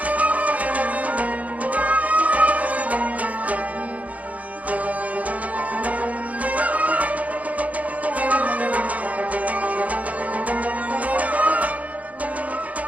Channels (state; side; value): late; left; 0.071 ms